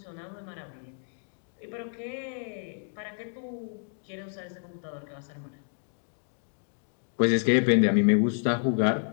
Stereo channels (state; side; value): silent; right; 58 dB below the other